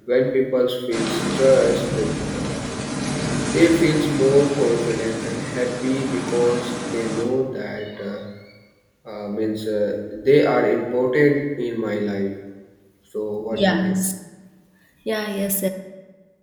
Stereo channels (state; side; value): identical; both; correlation 1.00